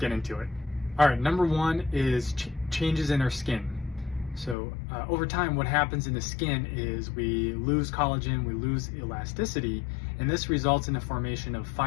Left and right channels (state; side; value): drops out; right; at 4.5 s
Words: into it. All right, number 1 is changes in our skin. So over time, what happens in the skin is we lose collagen, we lose elasticity, and this results in the formation of